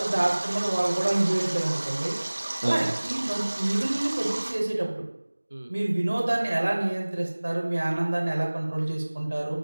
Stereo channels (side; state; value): both; inverted; correlation -1.00